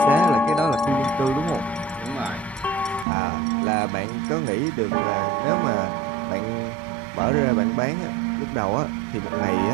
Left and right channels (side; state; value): left; drops out; at 3.1 s